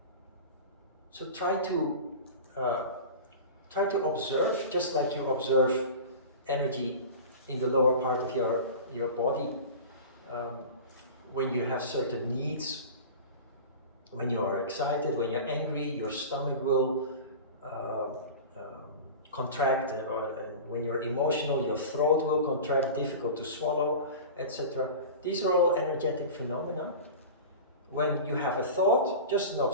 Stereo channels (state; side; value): inverted; both; correlation -0.33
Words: So try to observe, just like you observe energy in the lower part of your body. When you have certain needs, when you are excited, when you're angry, your stomach will contract, and when you're emotional, your throat will contract, difficult to swallow, etc. These are all energetic phenomena. When you have a thought, just an